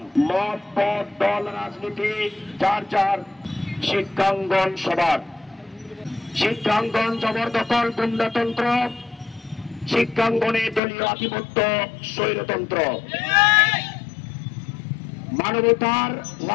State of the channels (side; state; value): right; drops out; at 10.8 s